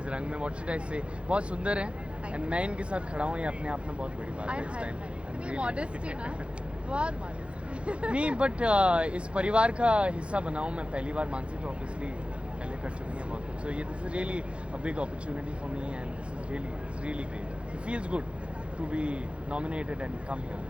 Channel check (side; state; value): left; late; 0.059 ms